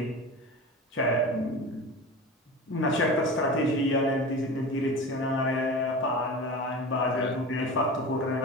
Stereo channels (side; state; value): both; normal; correlation 0.31